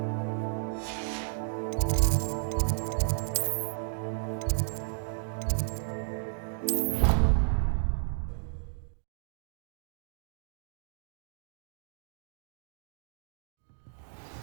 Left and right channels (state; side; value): silent; left; digital silence